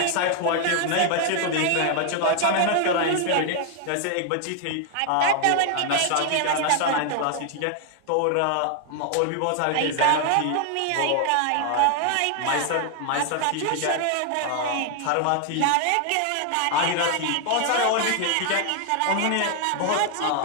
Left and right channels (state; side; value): different; both; correlation 0.00